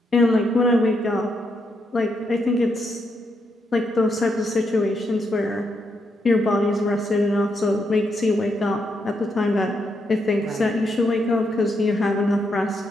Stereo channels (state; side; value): normal; both; correlation 0.79